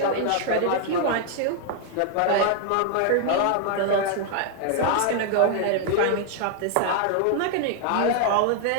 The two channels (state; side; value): different; both; correlation 0.00